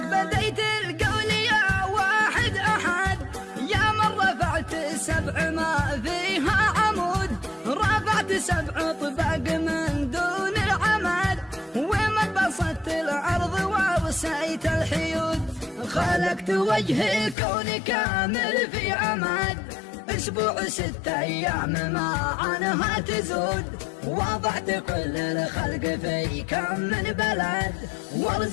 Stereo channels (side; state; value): right; drops out; at 17.4 s